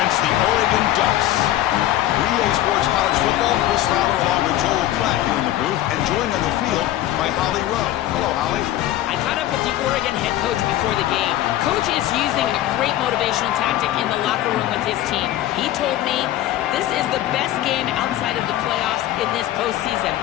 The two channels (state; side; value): quieter; right; 13.7 dB